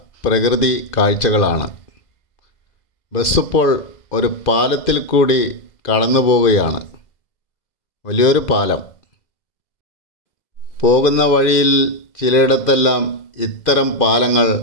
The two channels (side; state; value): right; late; 2.5 ms